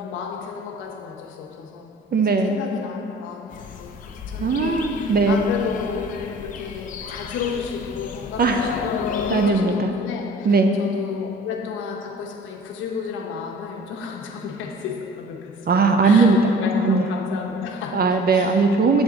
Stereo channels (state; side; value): normal; both; correlation 0.47